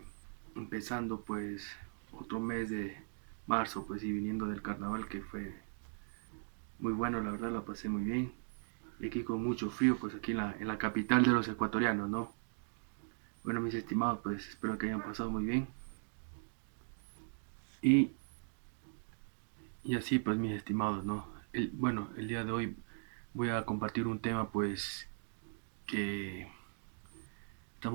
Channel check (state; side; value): silent; left; digital silence